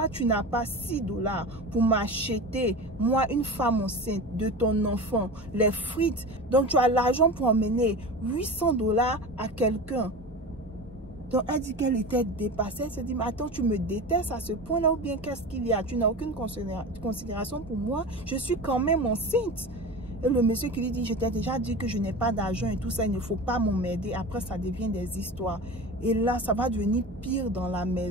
tu n'as pas 6 $ pour m'acheter, moi, une femme enceinte de ton enfant, les frites. Donc, tu as l'argent pour emmener 800 $ à quelqu'un. Donc, elle dit qu'elle était dépassée. Elle s'est dit, mais attends, tu me détestes à ce point-là ou bien qu'est-ce qu'il y a? Tu n'as aucune considération pour moi. Je suis quand même enceinte. Et le monsieur qui lui dit, je t'ai déjà dit que je n'ai pas d'argent et tout ça, il ne faut pas m'emmerder. Après, ça devient des histoires. Et là, ça va devenir pire dans la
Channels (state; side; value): normal; both; correlation 0.30